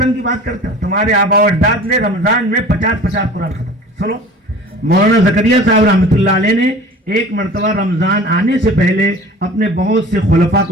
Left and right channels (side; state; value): both; normal; correlation 0.42